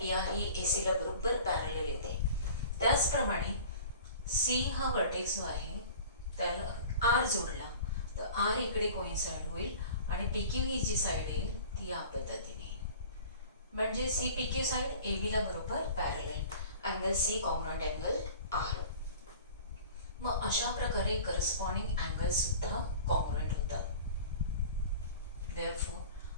PR ही AC ला बरोबर पॅरलल येते. त्याचप्रमाणे C हा वर्टेक्स जो आहे त्याला आर जोडला तर आर इकडे कोइन्साइड होईल आणि पी क्यू ही जी साईड येईल ती या पद्धतीने, म्हणजे C P Q side A बीला बरोबर parallel, angle C congruent angle R. मग अशा प्रकारे करस्पॉन्डिंग अँगल सुद्धा कॉन्ग्रुएंट होतात. Therefore,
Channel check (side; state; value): both; inverted; correlation -0.42